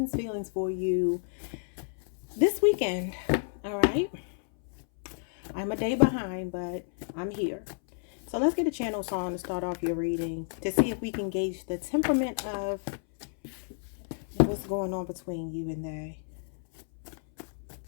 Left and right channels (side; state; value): right; silent; 57 dB below the other